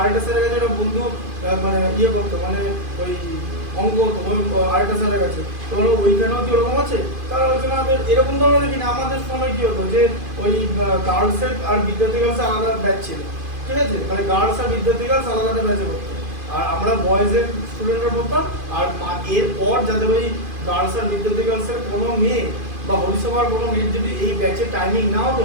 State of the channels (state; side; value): late; left; 2.5 ms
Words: স্যারের কাছে একটা বন্ধু মানে ইয়ে করতো মানে ওই অঙ্ক হতো ওই আরেকটা স্যারের কাছে তো হলো ওইখানেও কি ওরকম আছে তারা বলছে না এরকম ধরনের দেখি না আমাদের সময় কি হতো যে ওই গার্লসের আর বিদ্যার্থী গার্লসের আলাদা ব্যাচ ছিল ঠিক আছে মানে গার্লস আর বিদ্যার্থী গার্লস আলাদা আলাদা ব্যাচে পড়তো আর আমরা বয়েজের স্টুডেন্টরা পড়তাম আর এরপর যাদের ওই গার্লস আর বিদ্যার্থী গার্লসের কোনো মেয়ে বা হরিসভার কোনো মেয়ের যদি এই ব্যাচে টাইমিং না হতো